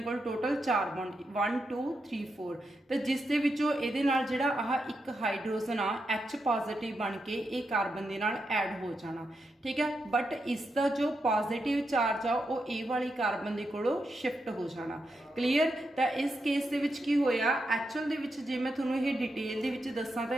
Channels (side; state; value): both; normal; correlation 0.85